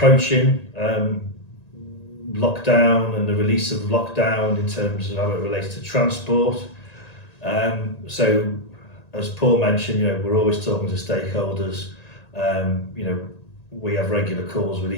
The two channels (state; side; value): late; right; 1.9 ms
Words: lockdown and the release of lockdown in terms of how it relates to transport. So as Paul mentioned, you know, we're always talking to stakeholders. You know, we have regular calls with